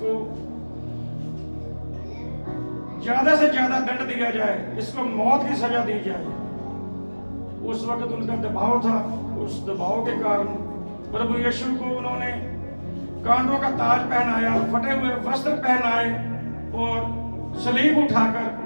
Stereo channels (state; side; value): inverted; both; correlation -1.00